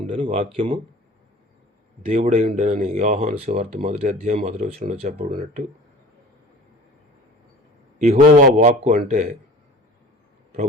ఉండెను, వాక్యము దేవుడై ఉండెనని యోహాను సువార్త 1వ అధ్యాయం 1వ వచనంలో చెప్పబడినట్టు యెహోవా వాక్కు అంటే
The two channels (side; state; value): both; normal; correlation 0.42